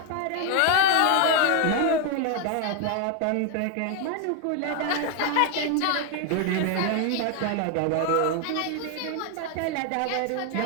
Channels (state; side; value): different; both; correlation 0.00